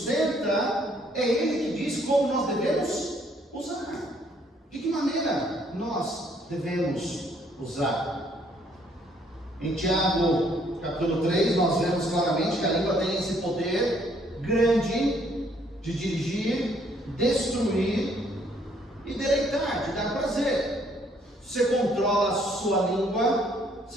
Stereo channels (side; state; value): both; normal; correlation 0.66